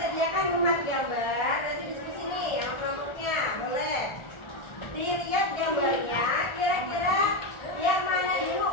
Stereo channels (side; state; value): right; late; 1.4 ms